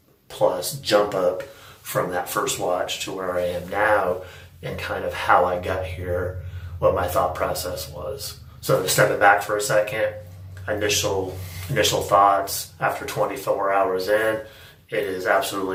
plus jump up from that first watch to where I am now, and kind of how I got here, what my thought process was. So to step it back for a second, initial thoughts after 24 hours in It is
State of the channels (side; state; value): both; identical; correlation 1.00